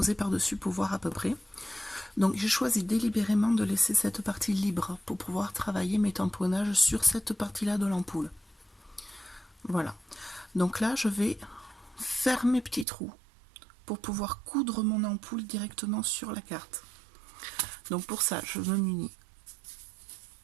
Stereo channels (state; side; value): drops out; left; at 12.9 s